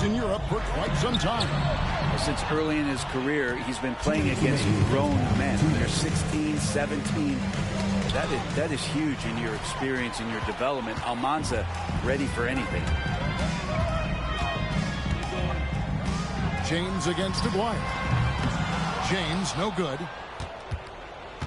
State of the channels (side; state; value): both; identical; correlation 1.00